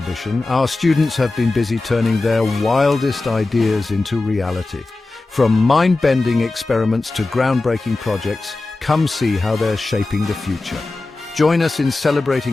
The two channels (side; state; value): right; quieter; 3.2 dB